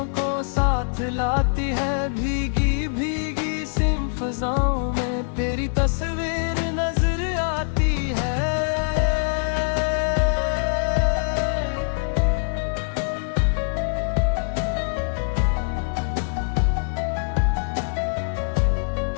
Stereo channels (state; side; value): silent; right; digital silence